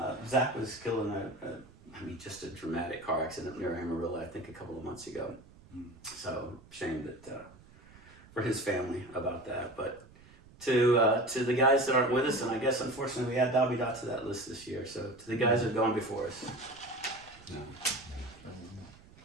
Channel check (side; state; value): right; noise; rumble, 23 dB below the sound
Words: Zach was killed in just a dramatic car accident near Amarillo, I think a couple of months ago. So shame that for his family about that. But to the guys that aren't with us, and I guess unfortunately we add Dobby Dot to that list this year. So to the guys that have gone before us.